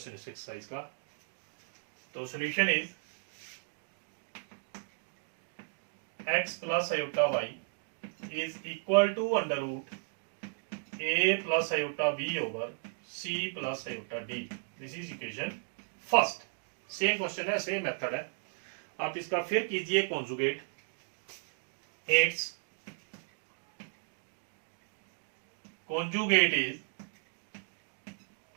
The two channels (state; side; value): silent; left; digital silence